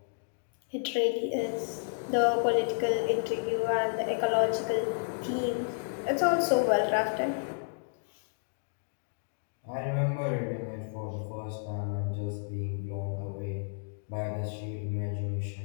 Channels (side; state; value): right; silent; digital silence